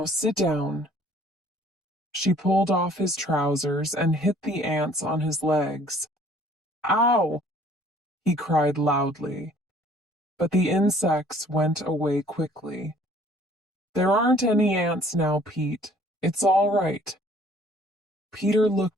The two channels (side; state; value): both; normal; correlation 0.56